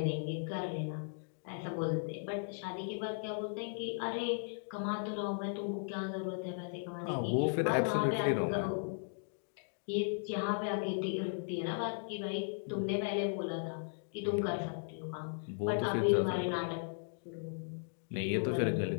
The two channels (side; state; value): right; silent; digital silence